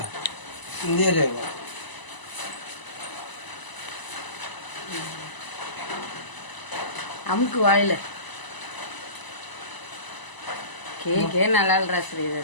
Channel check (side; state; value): right; late; 1.0 ms